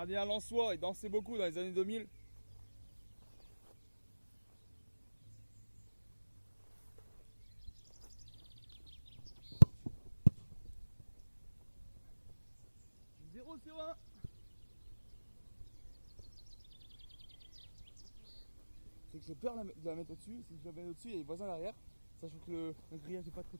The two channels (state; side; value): inverted; both; correlation -1.00